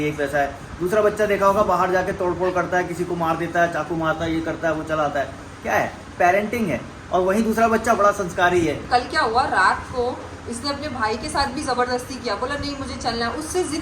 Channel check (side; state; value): both; identical; correlation 1.00